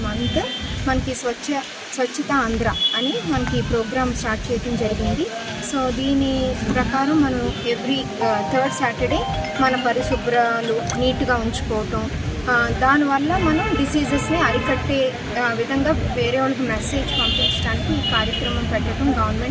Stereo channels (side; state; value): both; identical; correlation 1.00